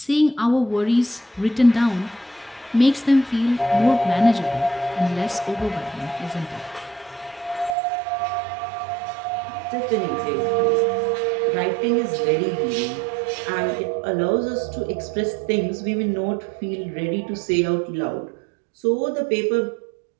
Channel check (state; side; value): drops out; left; at 7.8 s